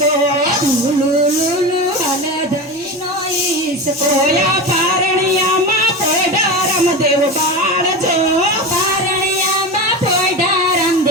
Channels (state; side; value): normal; both; correlation 0.24